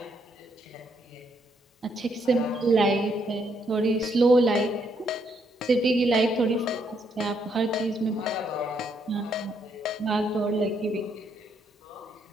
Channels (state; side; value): normal; both; correlation 0.74